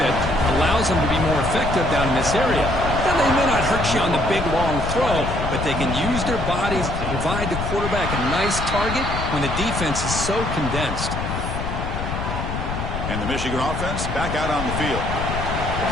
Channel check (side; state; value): left; noise; rumble, 4 dB below the sound